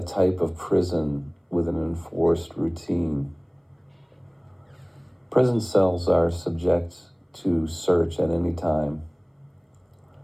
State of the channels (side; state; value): both; identical; correlation 1.00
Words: type of prison with an enforced routine. Prison cells are subject to search at any time.